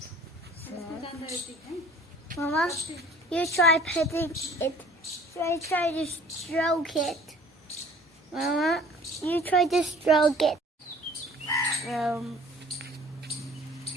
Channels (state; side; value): normal; both; correlation 0.51